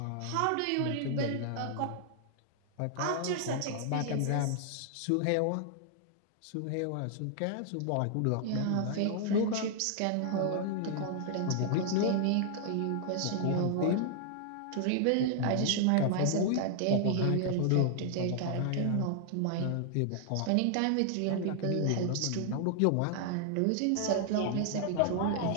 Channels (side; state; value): both; different; correlation 0.00